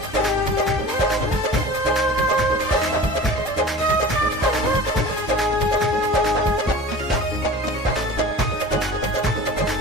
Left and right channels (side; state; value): both; normal; correlation 0.38